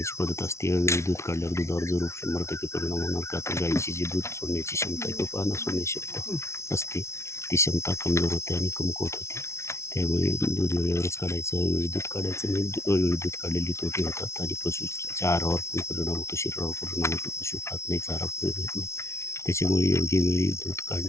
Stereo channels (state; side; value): late; right; 0.13 ms